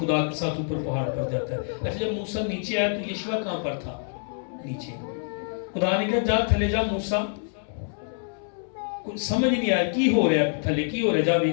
کے ساتھ اوپر پہاڑ پر جاتا ہے. اچھا جب موسیٰ نیچے آیا تو یشوع کہاں پر تھا؟ نیچے. خدا نے کہا جا تھلے جا موسیٰ, کچھ سمجھ نہیں آیا کی ہو رہا ہے تھلے, کی ہو رہا ہے, جا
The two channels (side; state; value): right; silent; 61 dB below the other